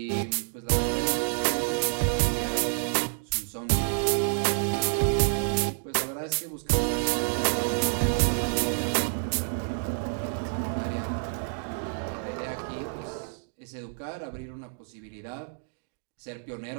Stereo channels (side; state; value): left; silent; digital silence